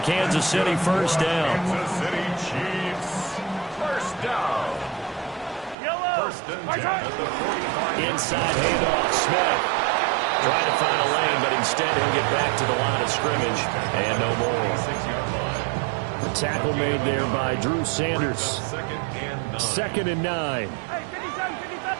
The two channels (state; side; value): drops out; left; at 5.8 s